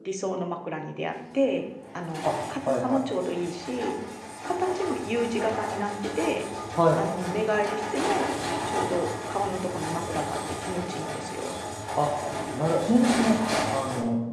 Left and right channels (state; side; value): identical; both; correlation 1.00